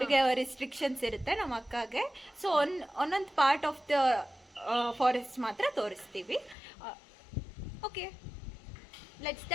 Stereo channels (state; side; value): drops out; right; at 6.6 s